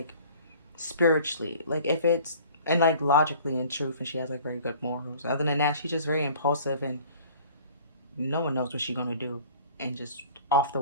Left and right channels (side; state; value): both; inverted; correlation -0.49